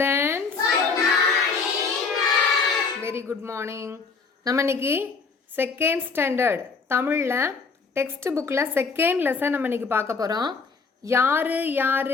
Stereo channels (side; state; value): right; quieter; 4.9 dB